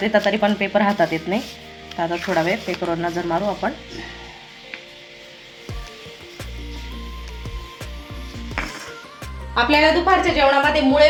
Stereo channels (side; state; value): both; identical; correlation 1.00